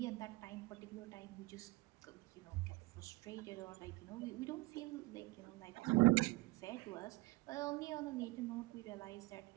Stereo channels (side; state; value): left; quieter; 22.8 dB